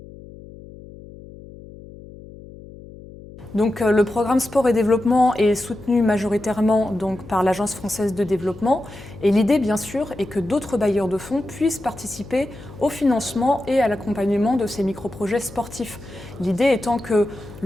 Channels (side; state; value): left; noise; hum, 17 dB below the sound